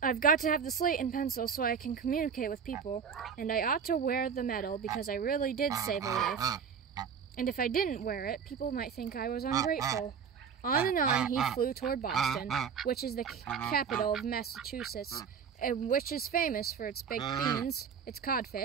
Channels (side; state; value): left; quieter; 6.8 dB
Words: I've got to have the slate and pencil so I can communicate with people, and I ought to wear the medal because I really did save a life. And if I didn't wear it, people might think I was ungrateful. On and on he flew toward Boston, which is the capital of Massachusetts, and which is famous for its baked beans, its